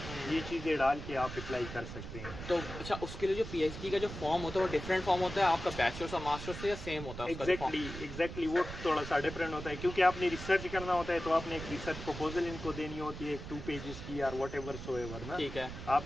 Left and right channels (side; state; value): right; noise; rumble, 9 dB below the sound